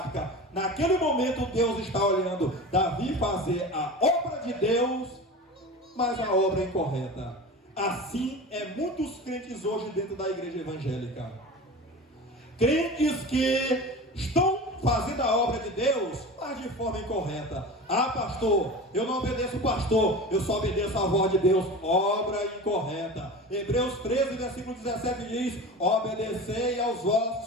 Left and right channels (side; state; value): both; normal; correlation 0.32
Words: Naquele momento Deus está olhando Davi fazer a obra de Deus, mas a obra incorreta. Assim é muitos crentes hoje dentro da igreja evangélica. Crentes que estão fazendo a obra de Deus, mas de forma incorreta. Ah, pastor, eu não obedeço o pastor, eu só obedeço a voz de Deus. Obra incorreta. Hebreus 13, versículo 17 diz: obedecei aos